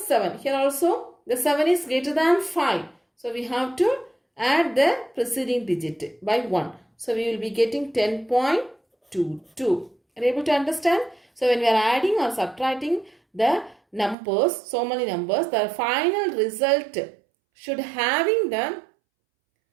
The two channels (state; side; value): drops out; left; at 14.2 s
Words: Here also the 7 is greater than 5. So we have to add the preceding digit by 1. So we will be getting 10.22. Are you able to understand? So when we are adding or subtracting the numbers, so many numbers, the final result should having the